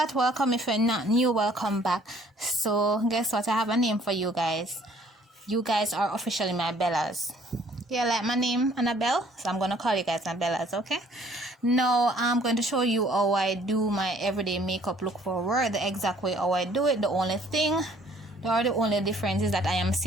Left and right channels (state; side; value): normal; both; correlation 0.59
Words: Welcome. If you're not new, welcome back. So, guess what? I have a name for you guys. You guys are officially my Bellas. Yeah, like my name, Annabelle. So, I'm going to call you guys my Bellas, okay? Now, I'm going to show you how I do my everyday makeup look forward, the exact way how I do it. The only difference is that I am